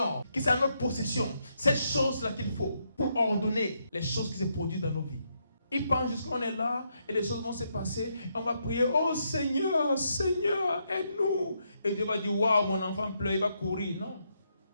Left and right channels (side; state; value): both; inverted; correlation -0.78